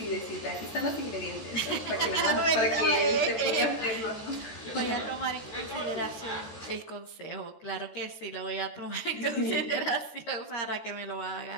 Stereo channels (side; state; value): right; late; 14 ms